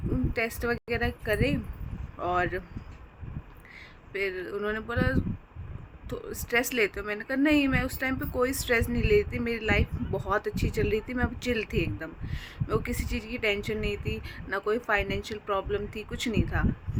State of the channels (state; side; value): identical; both; correlation 1.00